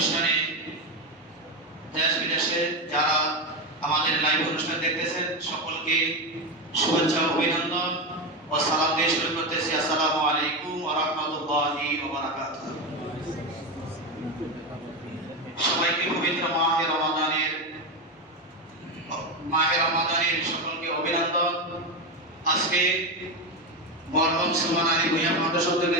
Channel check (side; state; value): both; normal; correlation 0.14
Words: দেশ বিদেশে যারা আমাদের লাইভ অনুষ্ঠান দেখতেছেন সকলকে শুভেচ্ছা ও অভিনন্দন ও সালাম দিয়ে শুরু করতেছি। আসসালামু আলাইকুম ওয়া রাহমাতুল্লাহি ওয়া বারাকাতুহু। সবাইকে পবিত্র মাহে রমাদানের সকলকে অভিনন্দন। আজকে মরহুম সুবহান আলী ভূঁইয়া ফাউন্ডেশন থেকে